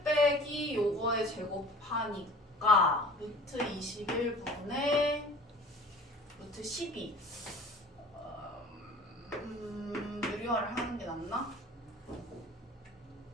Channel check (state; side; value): normal; both; correlation 0.45